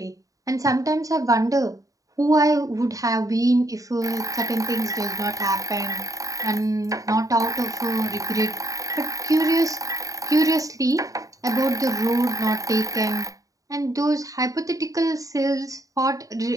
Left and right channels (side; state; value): left; late; 0.16 ms